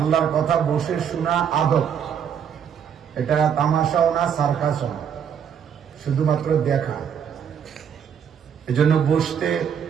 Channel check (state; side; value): quieter; left; 8.0 dB